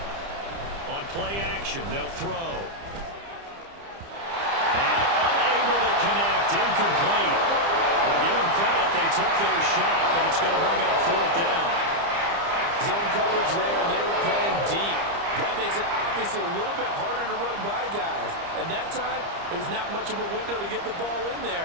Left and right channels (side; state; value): left; late; 30 ms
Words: On play action, they'll throw. And unable to connect, incomplete. Well, give them credit, they took their shot, but it's going to bring up 4th down. Zone coverage there, and they were playing deep. That makes it obviously a little bit harder to run by guys. And that time, there's not much of a window to get the ball in